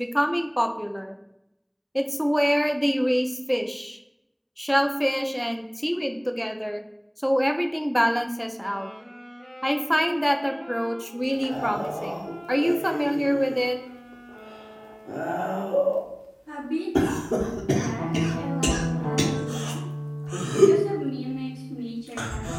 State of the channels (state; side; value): identical; both; correlation 1.00